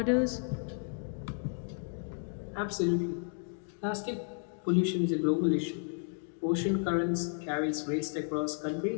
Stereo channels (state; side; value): silent; right; 56 dB below the other